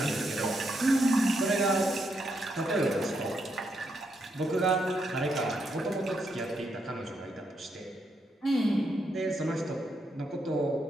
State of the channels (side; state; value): both; normal; correlation 0.79